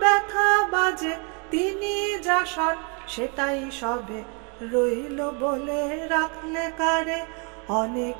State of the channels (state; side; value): quieter; left; 35.7 dB